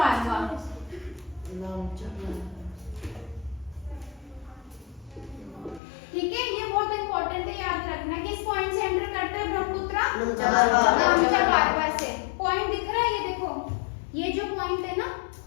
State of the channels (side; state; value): right; drops out; at 5.8 s